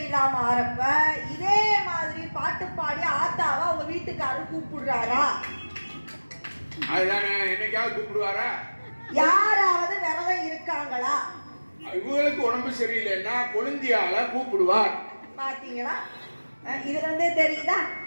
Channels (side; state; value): both; inverted; correlation -1.00